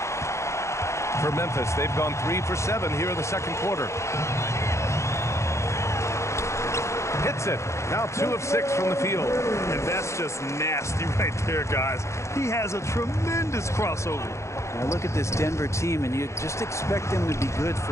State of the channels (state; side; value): late; right; 0.14 ms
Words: For Memphis, they've gone 3 for 7 here in the second quarter. Hits it. Now 2 of 6 from the field. And that's just nasty right there, guys. He has a tremendous crossover. Now look at this Denver team, and you just expect them to be good